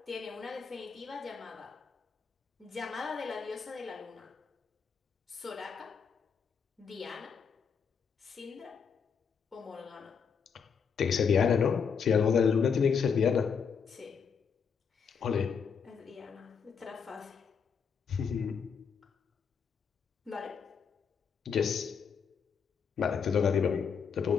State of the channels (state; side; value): quieter; right; 6.4 dB